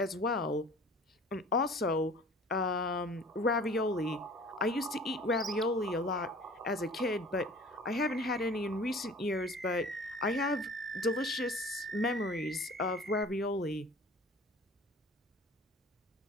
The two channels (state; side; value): normal; both; correlation 0.46